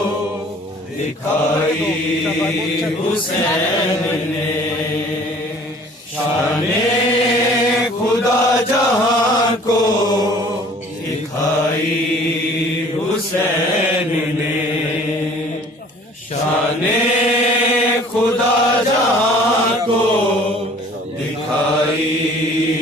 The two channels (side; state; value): both; normal; correlation 0.51